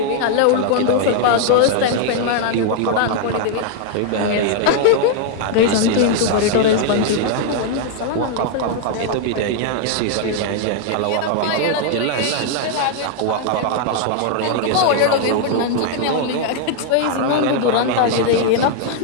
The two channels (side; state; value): both; different; correlation 0.00